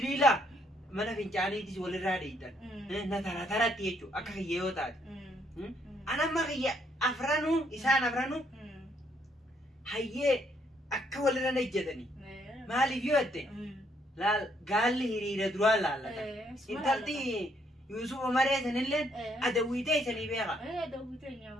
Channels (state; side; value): normal; both; correlation 0.70